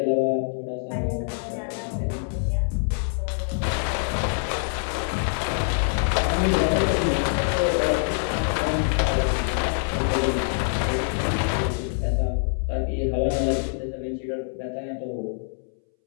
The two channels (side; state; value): right; silent; 61 dB below the other